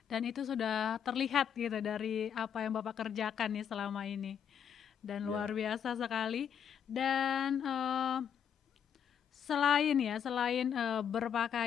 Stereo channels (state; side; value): quieter; right; 8.2 dB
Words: Dan itu sudah terlihat gitu dari apa yang Bapak kerjakan nih selama ini. Dan luar biasa sekali. Dan selain